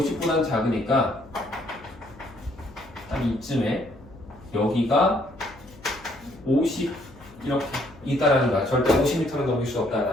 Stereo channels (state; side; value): noise; left; hum, 22 dB below the sound